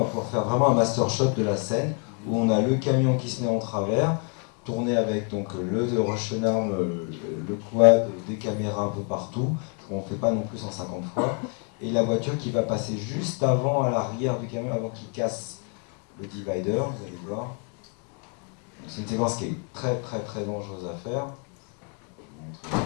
pouvoir faire vraiment un master shot de la scène où on a le camion qui se met en travers, tourné avec donc le rush arm, le quad, des caméras un peu partout. On ne fait pas non plus 150 fois. Et la voiture qui va passer juste avant, à l'arrière du camion, avant qu'il casse le divider, vous allez voir. C'est une séquence qui est très très très dangereuse à faire. Je vais vous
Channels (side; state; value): right; quieter; 37.8 dB